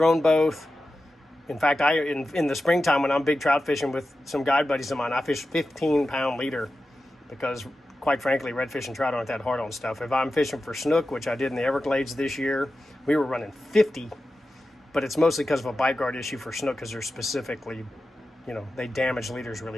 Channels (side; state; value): both; normal; correlation 0.92